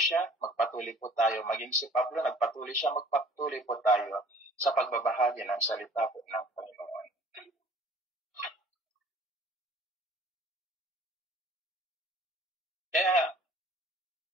magpatuloy po tayo. Maging si Pablo nagpatuloy siya, magpatuloy po tayo sa pagbabahagi ng salita po ng Panginoon. Kaya,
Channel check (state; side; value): normal; both; correlation 0.52